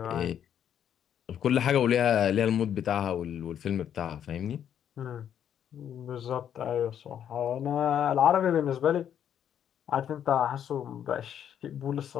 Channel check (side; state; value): right; quieter; 9.4 dB